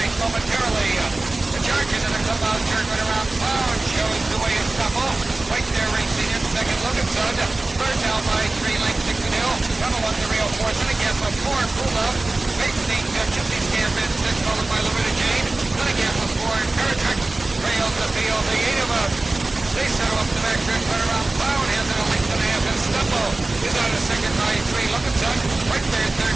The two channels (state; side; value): quieter; left; 3.1 dB